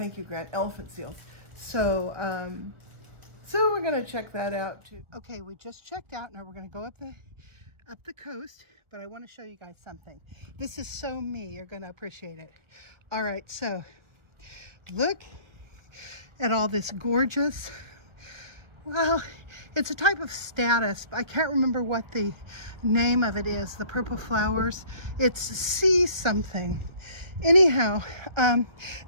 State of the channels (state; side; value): late; left; 1.4 ms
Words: you, Grant. Elephant seals. So, so we're gonna check that out too. Okay, we just checked out. Now we're gonna go up the coast, but I want to show you guys something. This is so me. You're gonna appreciate it. All right, so look at all this gorgeous, well, it's a type of statice. I can't remember what the name of it is, the purple flowers. It's sea something. Anyhow,